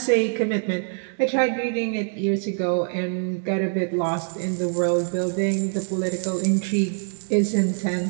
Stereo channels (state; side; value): silent; left; 62 dB below the other